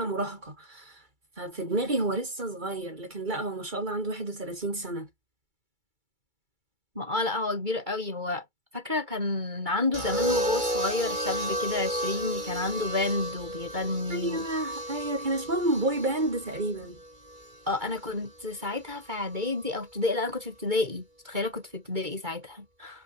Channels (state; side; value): late; left; 2.3 ms